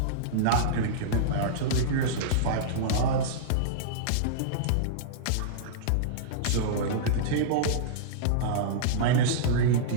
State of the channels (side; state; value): both; different; correlation -0.03